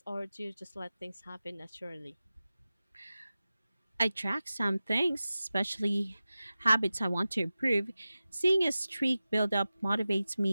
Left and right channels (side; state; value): both; inverted; correlation -0.95